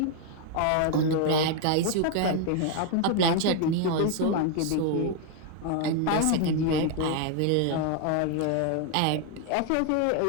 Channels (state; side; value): different; both; correlation 0.00